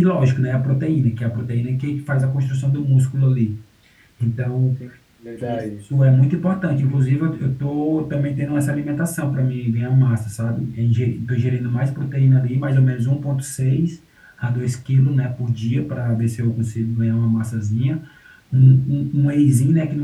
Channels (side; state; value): both; identical; correlation 1.00